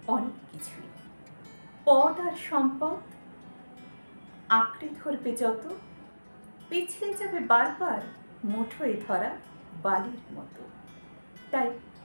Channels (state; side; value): inverted; both; correlation -1.00